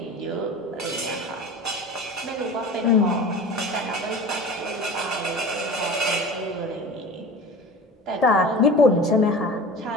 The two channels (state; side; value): normal; both; correlation 0.36